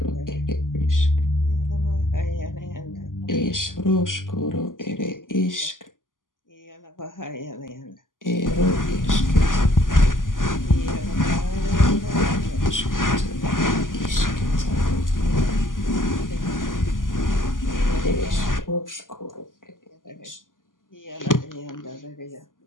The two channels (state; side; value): late; right; 0.89 ms